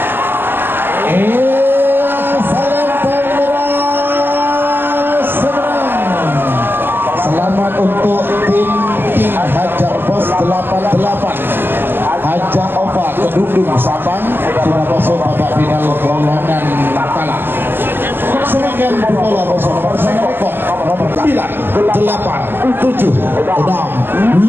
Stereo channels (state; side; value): late; left; 0.098 ms